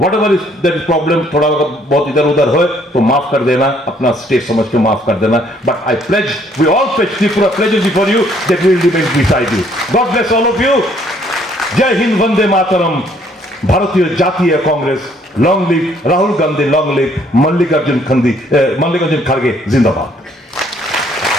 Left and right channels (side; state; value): both; normal; correlation 0.64